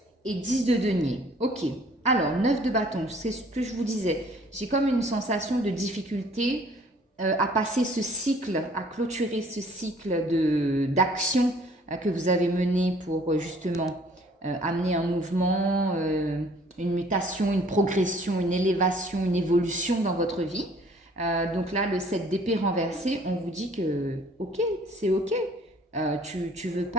et 10 de denier. Ok, alors 9 de bâton, c'est ce que je vous disais. J'ai comme une sensation de difficulté à passer ce cycle, à clôturer ce cycle d'action que vous avez mené pour justement amener un mouvement, une mutation, une progression, une élévation, une évolution dans votre vie. Donc là, le 7 d'épée renversé, on vous dit que ok, c'est ok. Tu veux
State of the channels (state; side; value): normal; both; correlation 0.56